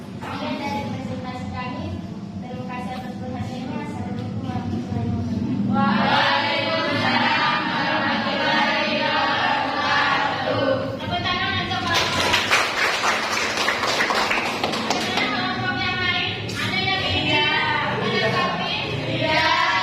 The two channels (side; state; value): both; identical; correlation 1.00